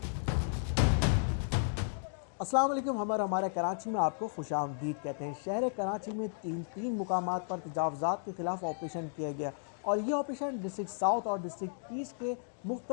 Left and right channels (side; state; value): right; silent; digital silence